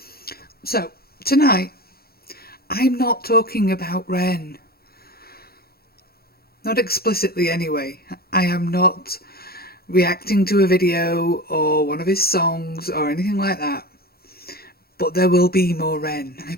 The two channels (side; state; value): right; late; 0.45 ms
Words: So, tonight, I'm not talking about Ren. Not explicitly, anyway. I am not reacting to a video or one of his songs or anything like that. But there will be more Ren, I